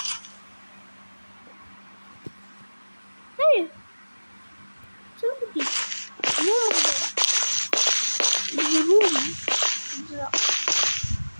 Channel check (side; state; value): both; inverted; correlation -1.00